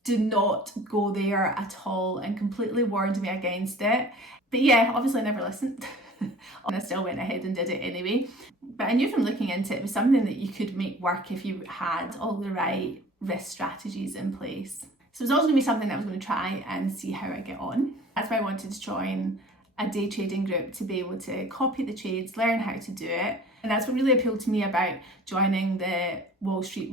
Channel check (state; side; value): normal; both; correlation 0.46